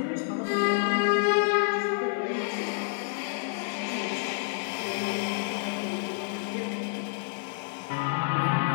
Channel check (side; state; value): right; silent; 59 dB below the other